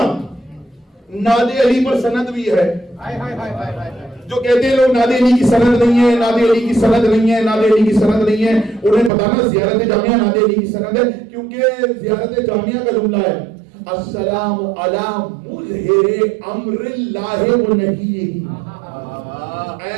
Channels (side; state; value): left; drops out; at 9.1 s